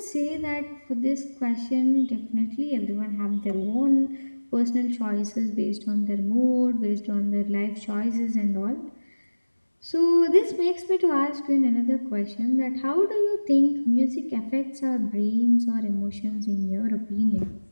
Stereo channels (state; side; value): inverted; both; correlation -1.00